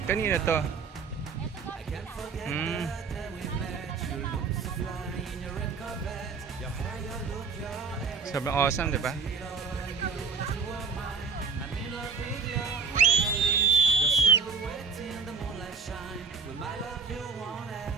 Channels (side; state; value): left; quieter; 5.1 dB